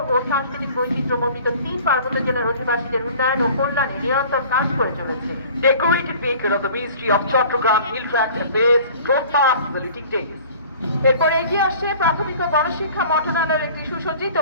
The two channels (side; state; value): both; inverted; correlation -0.46